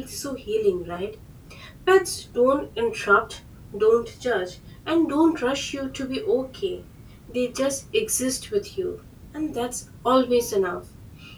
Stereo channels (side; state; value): both; identical; correlation 1.00